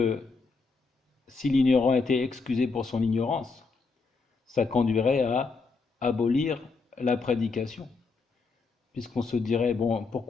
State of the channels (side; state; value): right; quieter; 4.3 dB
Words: si l'ignorant était excusé pour son ignorance, ça conduirait à abolir la prédication, puisqu'on se dirait, bon,